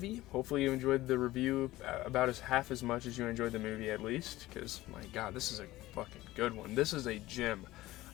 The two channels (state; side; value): quieter; right; 17.2 dB